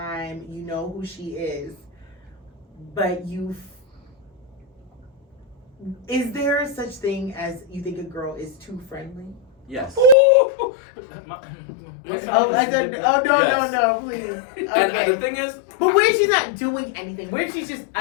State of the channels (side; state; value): right; drops out; at 10.2 s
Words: You know who she is, but is there such thing as you think a girl is too friendly? Yes. No, please. Okay. And the thing is, but what if she's not doing anything? What if she's just